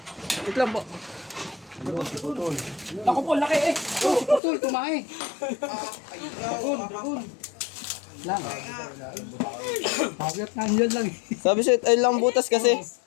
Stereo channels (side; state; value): right; drops out; at 4.4 s